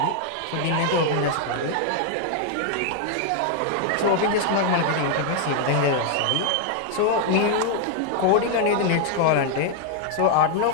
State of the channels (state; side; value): different; both; correlation 0.00